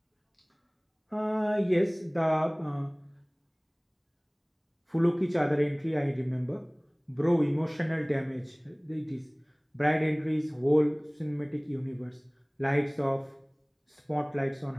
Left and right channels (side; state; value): both; identical; correlation 1.00